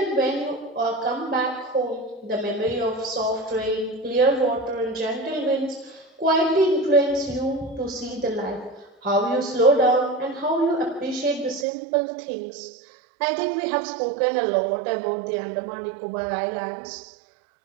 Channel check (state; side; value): drops out; left; at 11.7 s